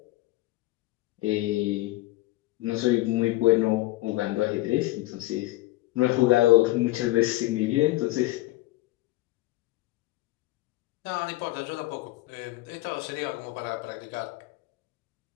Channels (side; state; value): right; quieter; 18.7 dB